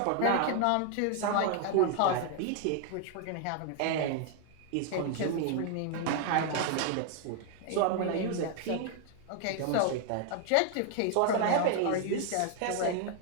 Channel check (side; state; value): both; different; correlation 0.00